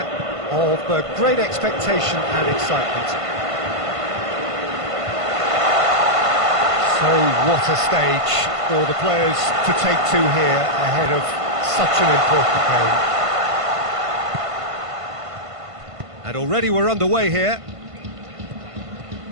of great expectation and excitement. So what a stage for the players to take to here ahead of such an important game. already we're underway here.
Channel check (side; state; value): left; late; 1.5 ms